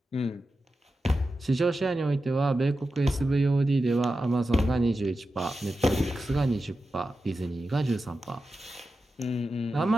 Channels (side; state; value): both; normal; correlation 0.91